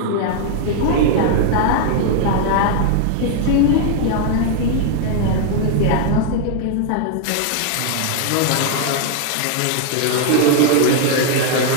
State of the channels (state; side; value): different; both; correlation 0.00